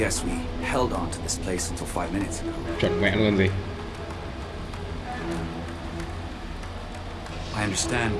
we held on to this place until 5 minutes ago. Chuẩn mẹ luôn gì. I understand,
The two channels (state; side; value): identical; both; correlation 1.00